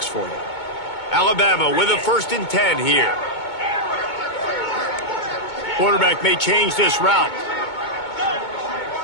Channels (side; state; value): right; late; 2.2 ms